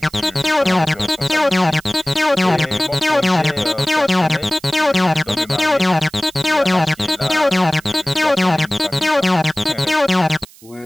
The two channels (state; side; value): noise; right; hiss, 24 dB below the sound